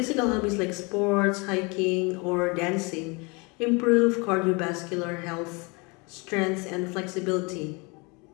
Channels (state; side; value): quieter; right; 29.2 dB